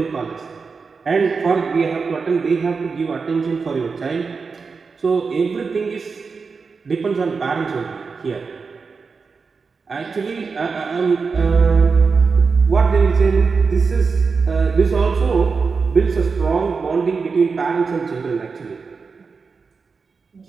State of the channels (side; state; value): left; quieter; 4.9 dB